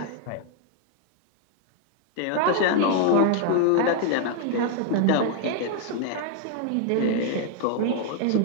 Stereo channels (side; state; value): both; different; correlation 0.00